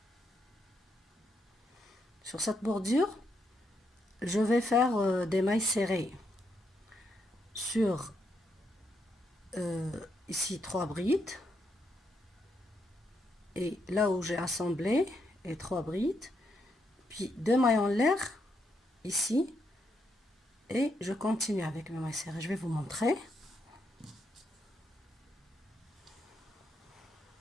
Sur cette bordure, je vais faire des mailles serrées. Sur ici 3 brides. Et là où j'ai assemblé, et 3 brides. Puis 2 mailles en l'air, ici. Et je continue avec mes mailles serrées. Je vais vous montrer.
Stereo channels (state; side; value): normal; both; correlation 0.79